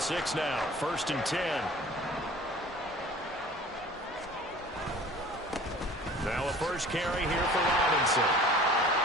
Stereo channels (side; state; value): both; normal; correlation 0.45